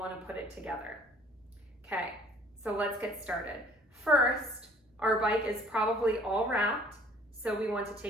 to put it together. Okay, so let's get started. First, our bike is probably all wrapped, so we want to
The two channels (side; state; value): both; normal; correlation 0.54